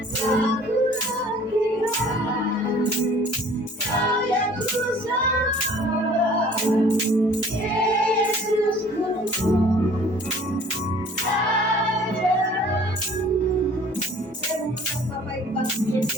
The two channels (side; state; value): both; normal; correlation 0.51